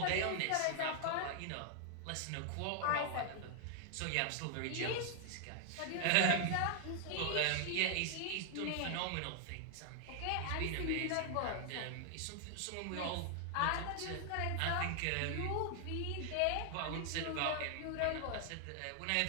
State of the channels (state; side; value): different; both; correlation 0.00